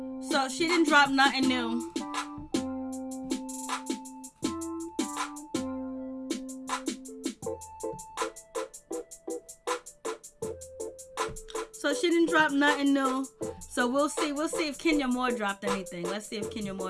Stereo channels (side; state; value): both; identical; correlation 1.00